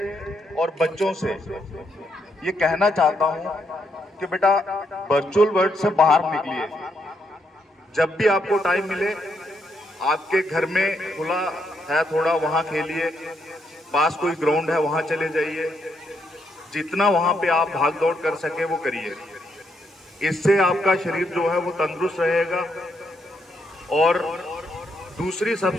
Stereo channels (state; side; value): normal; both; correlation 0.77